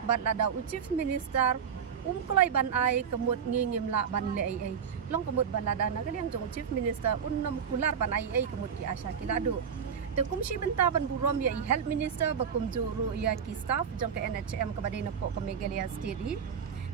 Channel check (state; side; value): quieter; left; 7.3 dB